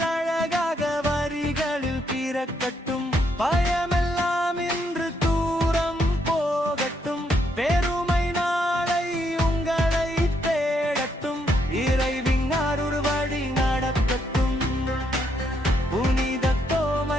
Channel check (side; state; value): both; normal; correlation 0.75